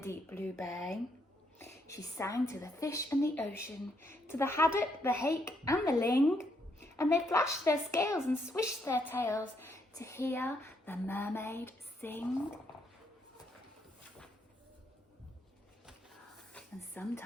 blue bay. She sang to the fish and the ocean, to the haddock, the hake and the ling, and they flashed their scales and swished their tails to hear the mermaid sing. And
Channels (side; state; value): both; normal; correlation 0.75